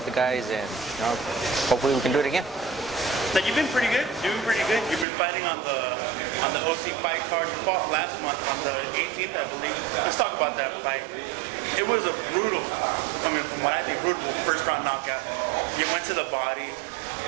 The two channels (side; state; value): left; drops out; at 5.1 s